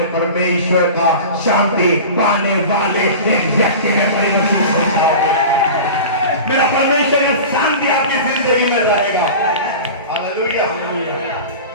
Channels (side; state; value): both; inverted; correlation -0.33